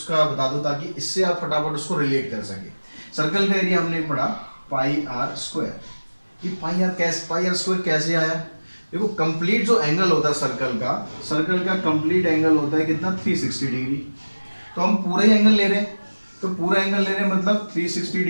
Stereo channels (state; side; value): inverted; both; correlation -1.00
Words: बता दूं ताकि इससे आप फटाफट उसको रिलेट कर सके। सर्कल का एरिया हमने पढ़ा पाई आर स्क्वायर, ये पाई आर स्क्वायर कैसे आया, देखो कंप्लीट जो एंगल होता है सर्कल का कंप्लीट एंगल होता है कितना, 360 डिग्री। तो हम पूरा ही एंगल ले रहे हैं, तो पूरा एंगल ले रहे हैं मतलब 360